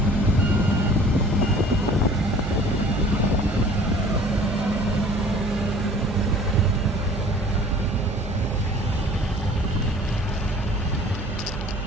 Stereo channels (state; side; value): noise; right; hum, 7 dB below the sound